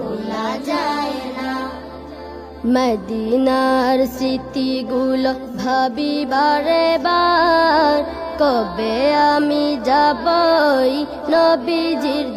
যায় না। মদিনার স্মৃতিগুলো ভাবি বারে বার, কবে আমি যাবই নবীজির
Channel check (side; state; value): both; identical; correlation 1.00